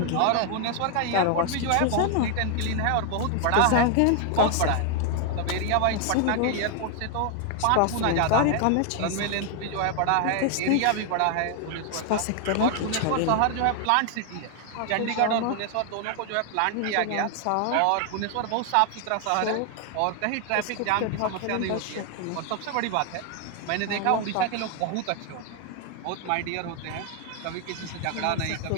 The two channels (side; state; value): both; different; correlation 0.00